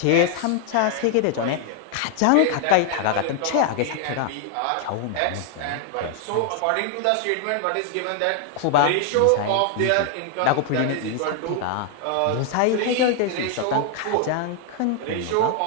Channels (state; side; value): different; both; correlation 0.00